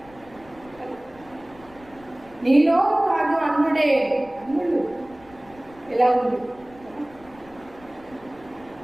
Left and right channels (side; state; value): left; noise; rumble, 24 dB below the sound